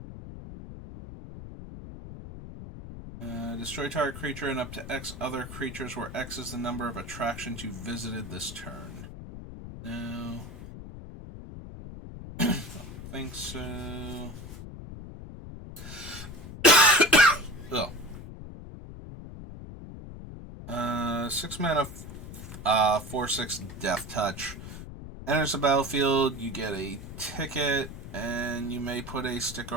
Destroy target creature and up to X other creatures, where X is the number of attractions you visited this turn. No. Don't think so. Oh. 6 mana, 4/6 Death Touch. Enters the battlefield, you get a ticket, and you may put a sticker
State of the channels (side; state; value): left; noise; rumble, 11 dB below the sound